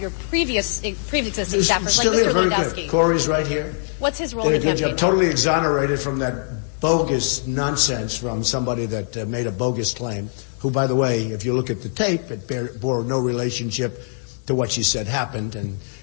your pre-existing staffers, like Mr. Lewandowski? Corey's right here. What's his role in the campaign? Totally exonerated from that bogus nonsense from somebody that made a bogus claim, who, by the way, if you look at the tape, it bore no relationship to what she said happened. And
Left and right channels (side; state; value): right; silent; digital silence